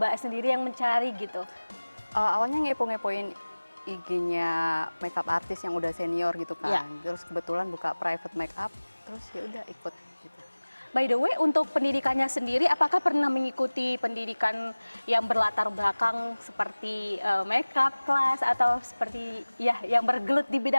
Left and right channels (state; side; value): inverted; both; correlation -1.00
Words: sendiri yang mencari gitu? Awalnya ngepo-ngepoin IG-nya makeup artis yang udah senior gitu Iya. kan. Terus kebetulan buka private makeup, terus ya udah ikut gitu. By the way, untuk pendidikannya sendiri, apakah pernah mengikuti pendidikan yang berlatar belakang seperti makeup class atau seperti ya yang bergelut di